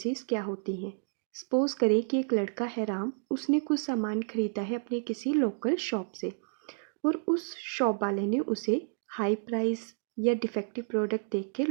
क्या होती हैं। सपोज करें कि एक लड़का है राम, उसने कुछ सामान खरीदा है अपने किसी लोकल शॉप से और उस शॉप वाले ने उसे हाई प्राइस या डिफेक्टिव प्रोडक्ट देख के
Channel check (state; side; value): silent; left; digital silence